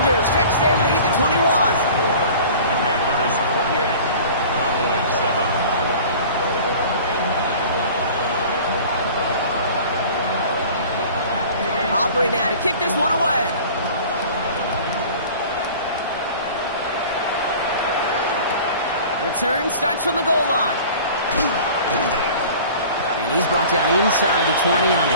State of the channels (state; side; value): inverted; both; correlation -0.43